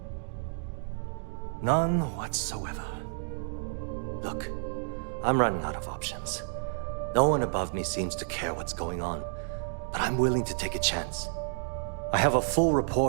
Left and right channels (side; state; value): left; silent; digital silence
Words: None whatsoever. Look, I'm running out of options. No one above me seems to care what's going on, but I'm willing to take a chance. I have a full